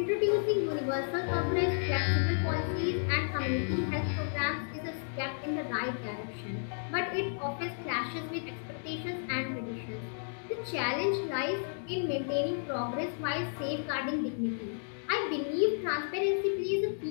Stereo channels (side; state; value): right; silent; digital silence